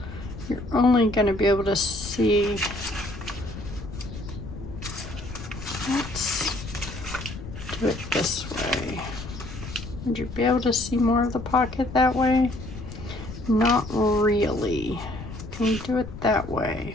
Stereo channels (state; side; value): noise; left; rumble, 11 dB below the sound